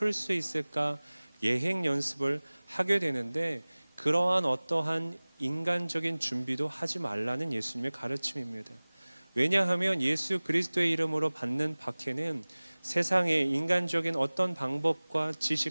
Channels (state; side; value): inverted; both; correlation -1.00